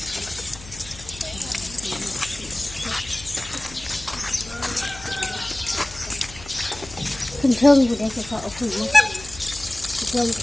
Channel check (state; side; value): noise; left; hum, 17 dB below the sound